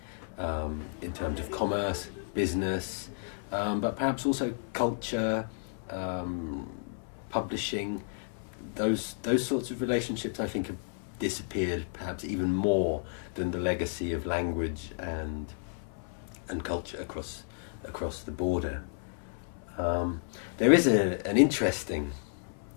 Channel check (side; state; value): right; silent; 56 dB below the other